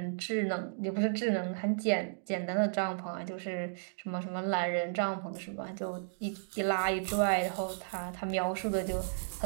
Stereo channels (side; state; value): left; silent; digital silence